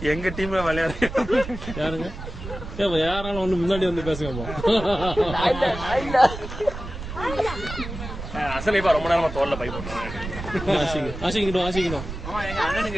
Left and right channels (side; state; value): right; noise; rumble, 9 dB below the sound